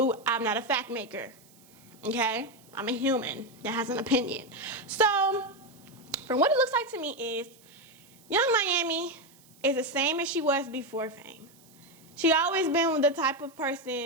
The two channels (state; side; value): noise; right; hiss, 27 dB below the sound